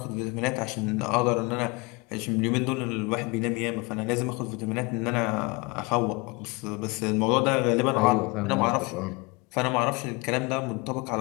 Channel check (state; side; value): quieter; right; 27.3 dB